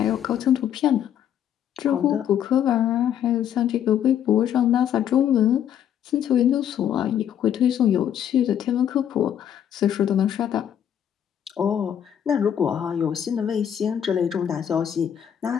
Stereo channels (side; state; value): right; quieter; 9.6 dB